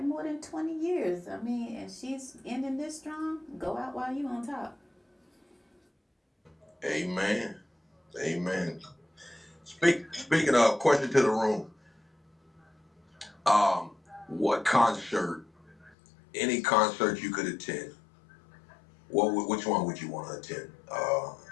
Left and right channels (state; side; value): drops out; right; at 16.0 s